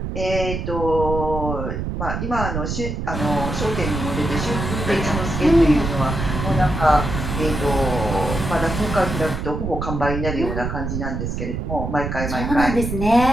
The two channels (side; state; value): right; noise; rumble, 4 dB below the sound